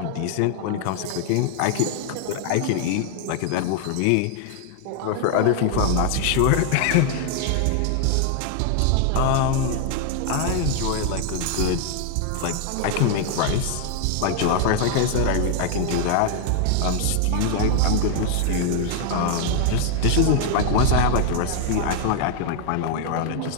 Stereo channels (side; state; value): both; different; correlation 0.00